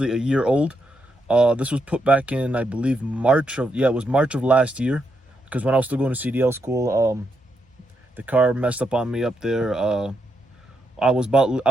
a year old. This was put back in, I believe, March of last year, because when I was still going to CDL school, the car messed up on me up there. I was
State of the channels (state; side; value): normal; both; correlation 0.81